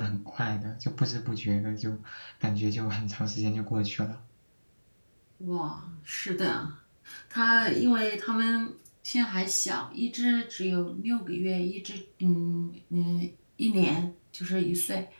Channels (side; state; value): both; inverted; correlation -1.00